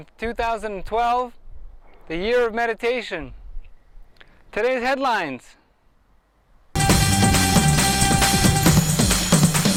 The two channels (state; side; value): identical; both; correlation 1.00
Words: 2012, the year of meditation. Today's headlines.